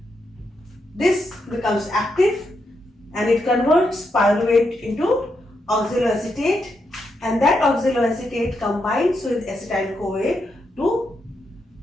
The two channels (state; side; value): normal; both; correlation 0.82